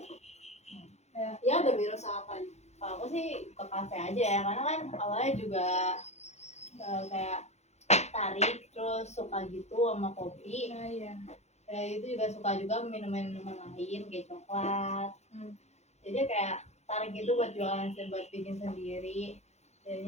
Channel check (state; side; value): late; right; 0.32 ms